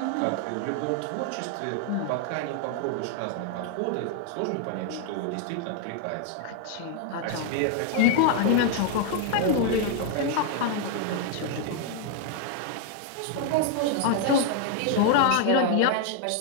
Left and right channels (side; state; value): both; different; correlation 0.00